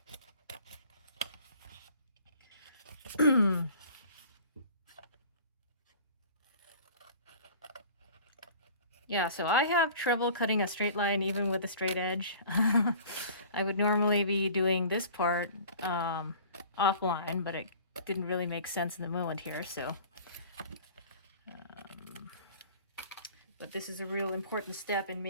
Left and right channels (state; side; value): inverted; both; correlation -0.46